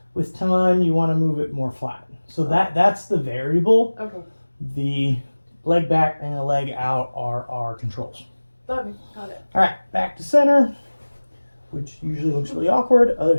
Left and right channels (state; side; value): inverted; both; correlation -1.00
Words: with time you want to move it more flat. So that's the variable. Okay. The leg back and the leg out are our controls. Okay. Got it. All right, back to center, which usually looks really awkward. Other